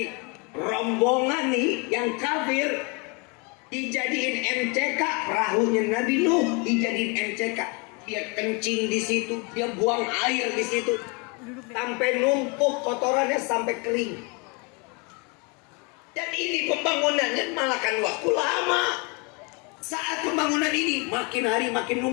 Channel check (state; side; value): quieter; right; 31.1 dB